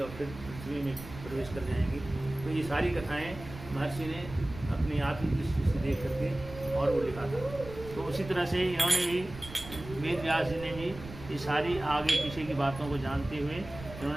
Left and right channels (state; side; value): noise; right; rumble, 13 dB below the sound